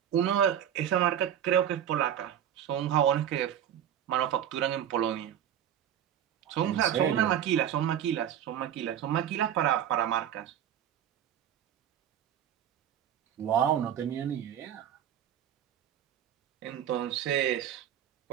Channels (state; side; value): quieter; left; 9.9 dB